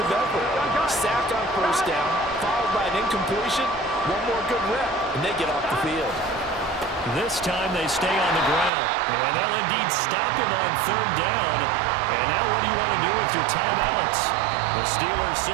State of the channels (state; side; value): drops out; left; at 8.7 s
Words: effort. Sack on first down, followed by an incompletion. One more good rep, and they get off the field. This time they stay on the ground. And they'll indeed stop him on third down. And now what do you want to do with your timeouts? The Steelers